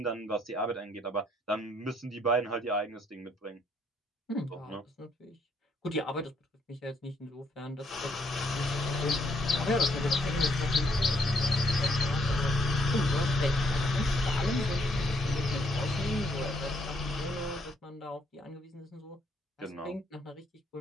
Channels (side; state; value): both; normal; correlation 0.71